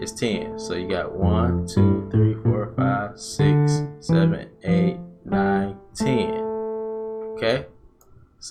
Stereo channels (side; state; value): both; identical; correlation 1.00